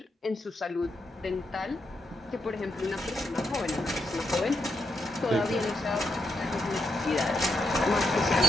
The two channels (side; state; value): both; normal; correlation 0.82